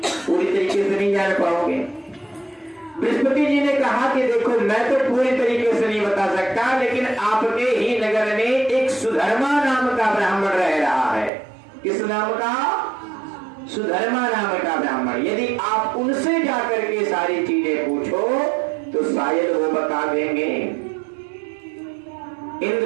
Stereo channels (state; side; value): drops out; left; at 11.3 s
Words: पूरी तरीके से नहीं जान पाओगे। बृहस्पति जी ने कहा कि देखो मैं तो पूरी तरीके से नहीं बता सकता, लेकिन आपके ही नगर में एक सुधर्मा नाम का ब्राह्मण रह रहा है। किस नाम का? सुधर्मा नाम का ब्राह्मण। यदि आप उनसे जाकर के सारी चीजें पूछो तो शायद वो बता देंगे।